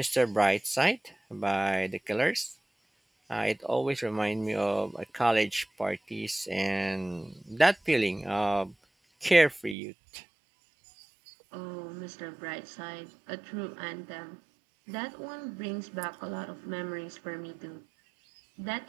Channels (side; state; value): left; drops out; at 9.8 s